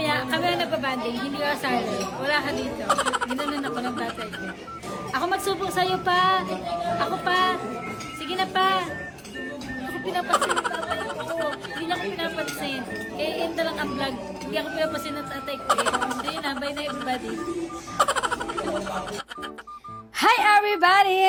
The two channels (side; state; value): both; identical; correlation 1.00